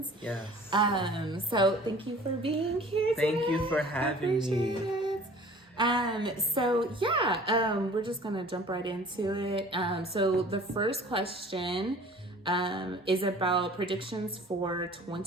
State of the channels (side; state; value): both; normal; correlation 0.47